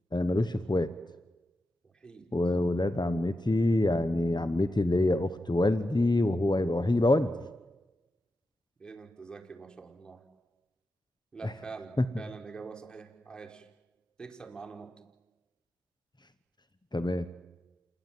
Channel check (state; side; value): normal; both; correlation 0.89